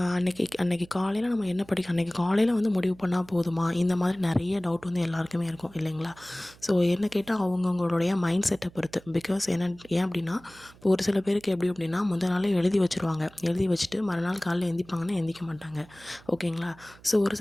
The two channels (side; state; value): right; noise; hum, 24 dB below the sound